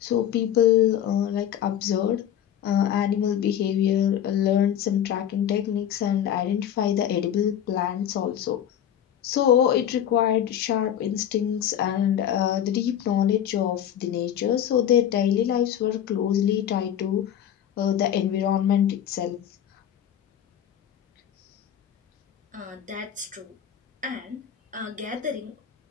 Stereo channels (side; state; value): right; quieter; 10.0 dB